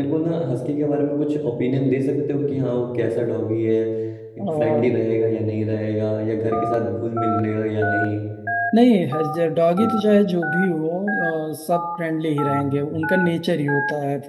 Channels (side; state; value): both; identical; correlation 1.00